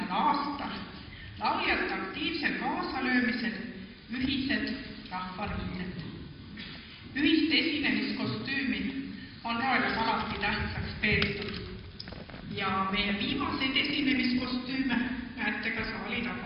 aastal lauljate aktiivsel kaasalöömisel ühised rahvariided. Ühist esinemiskostüümi on Roelas alati tähtsaks peetud ja meie viimaseid esinemiskostüüme näete ka saali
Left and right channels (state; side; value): identical; both; correlation 1.00